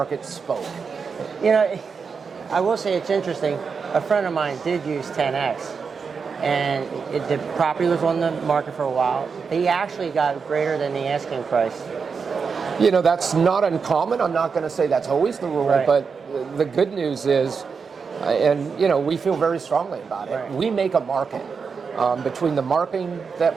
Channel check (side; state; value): left; quieter; 5.5 dB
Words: spoke. You know, I will say it's interesting. a friend of mine did use 10X, and the property was on the market for a while. He actually got greater than the asking price. You know, that's not uncommon. I'm not going to say that's always the rule, Right. but the good news is, and you know, we feel very strongly about it. Right. We make a market between the marketing that